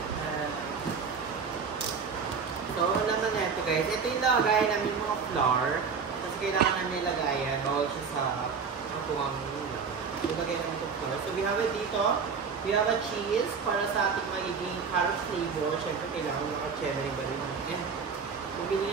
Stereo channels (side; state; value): left; quieter; 5.7 dB